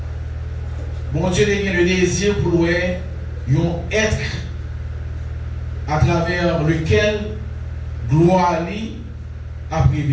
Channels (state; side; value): identical; both; correlation 1.00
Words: bon Dieu a le désir pour un être à travers lequel gloire a